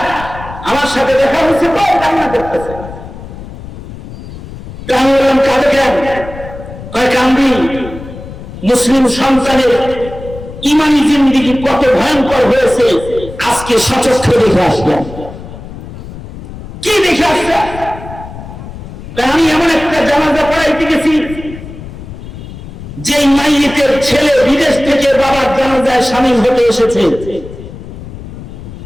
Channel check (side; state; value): left; noise; rumble, 13 dB below the sound